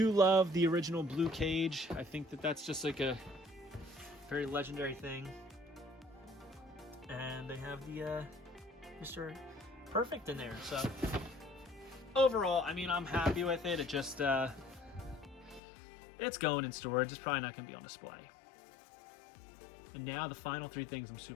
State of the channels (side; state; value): right; drops out; at 15.6 s